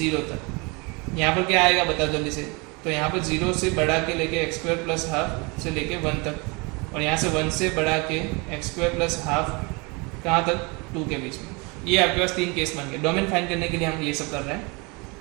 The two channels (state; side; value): quieter; left; 28.7 dB